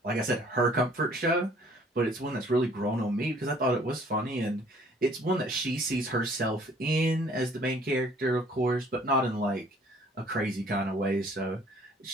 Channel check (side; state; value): both; normal; correlation 0.56